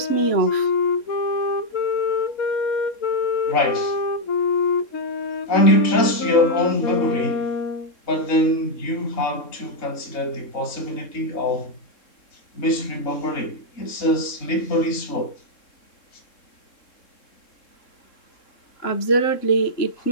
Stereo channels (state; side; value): late; right; 3.7 ms